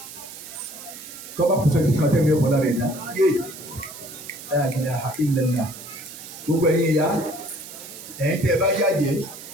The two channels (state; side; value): noise; right; hiss, 14 dB below the sound